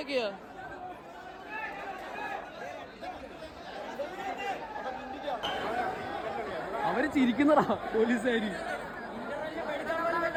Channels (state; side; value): identical; both; correlation 1.00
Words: അവര് ചിരിക്കുന്നതാ പോലീസുകാര്.